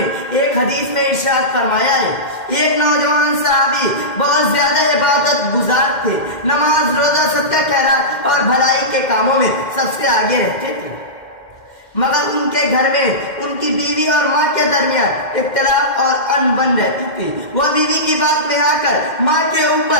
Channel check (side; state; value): right; late; 2.1 ms